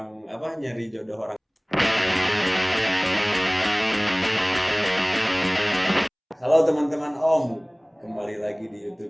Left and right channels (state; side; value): identical; both; correlation 1.00